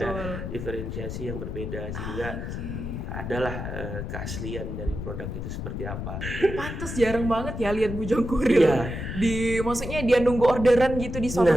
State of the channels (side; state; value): left; noise; rumble, 6 dB below the sound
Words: betul. diferensiasi yang berbeda sehingga Oke. adalah keaslian dari produk itu seperti apa. Pantes jarang banget ya lihat Bujang Kurir. Iya. Maksudnya dia nunggu orderan gitu di suatu